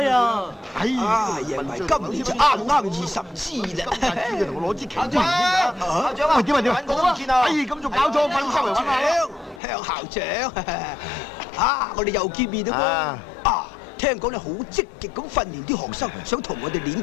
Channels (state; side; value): drops out; right; at 9.6 s